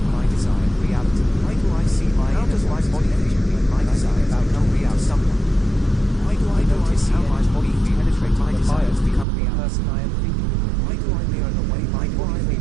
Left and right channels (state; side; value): drops out; left; at 9.2 s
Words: my desired reality? Why do I see my How does my body feel when my desired outcome becomes someone? Why do I notice how my body penetrates my desires to become the person I am thinking? Why do I mirror the way my body